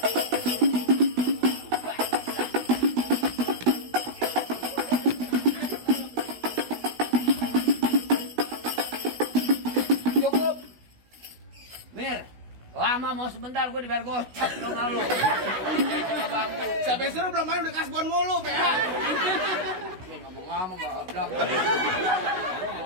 Cukup. Mir, lama mau sebentar gue dibayar gocap dong lu. Bangku. Sampai suruh belum main udah kasbon mulu. Ngomong-ngomong goblok.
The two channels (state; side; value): late; left; 16 ms